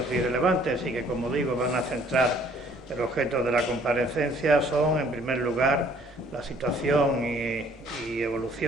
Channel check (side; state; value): both; normal; correlation 0.59